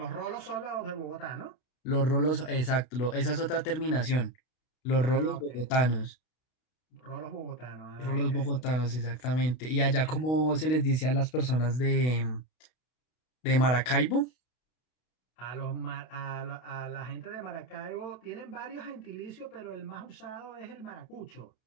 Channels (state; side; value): late; right; 32 ms